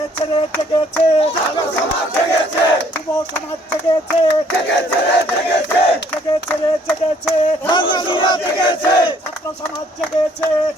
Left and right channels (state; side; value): normal; both; correlation 0.62